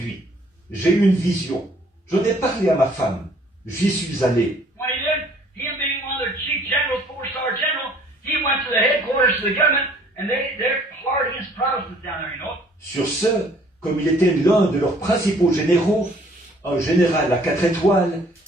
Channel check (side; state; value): both; normal; correlation 0.58